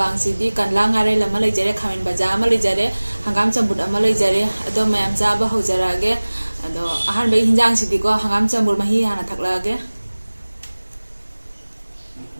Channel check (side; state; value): both; inverted; correlation -1.00